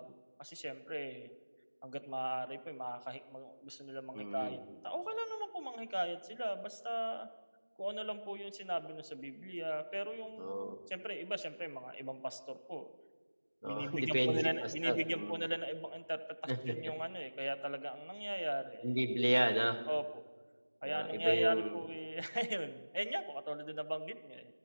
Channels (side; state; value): both; inverted; correlation -1.00